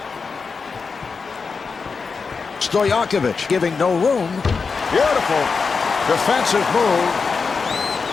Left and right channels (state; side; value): quieter; right; 5.0 dB